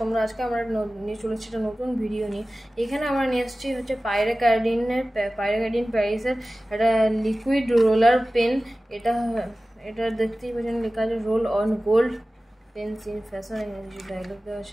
তোমরা? আজকে আমরা নিয়ে চলেছি একটা নতুন ভিডিও নিয়ে। এখানে আমরা নিয়ে এসেছি হচ্ছে পাইরাকার্ডিন প্যারিসের একটা লিকুইড রোলার পেন। এটা এটা দেখতেই পাচ্ছেন, লেখা আছে roll on gold pens in fashion, এখানে কিছু ডায়লগ দেওয়া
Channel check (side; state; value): both; normal; correlation 0.96